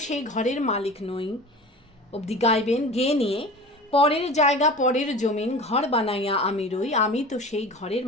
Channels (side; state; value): both; normal; correlation 0.36